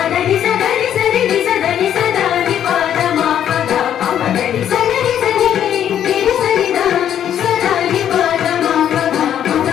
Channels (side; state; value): right; quieter; 10.0 dB